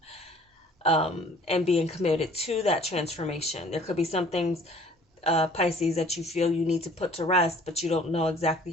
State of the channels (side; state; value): both; normal; correlation 0.53